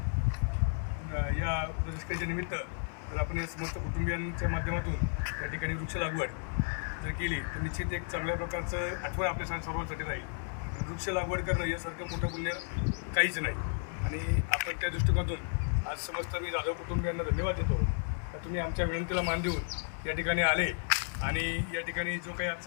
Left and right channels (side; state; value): right; silent; 56 dB below the other